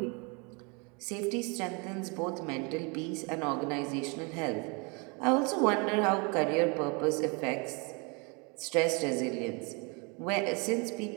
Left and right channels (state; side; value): quieter; left; 31.6 dB